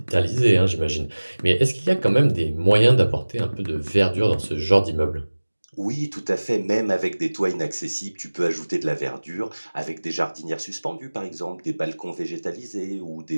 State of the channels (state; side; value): inverted; both; correlation -1.00